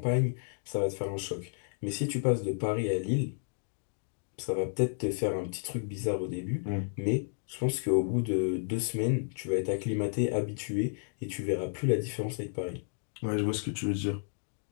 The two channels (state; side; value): silent; right; digital silence